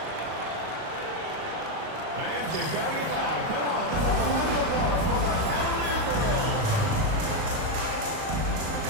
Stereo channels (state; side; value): late; left; 38 ms